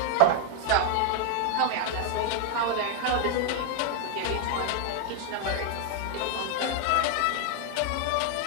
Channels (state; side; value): different; both; correlation 0.00